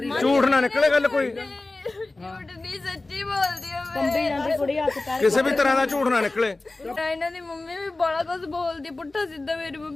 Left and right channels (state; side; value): quieter; right; 3.1 dB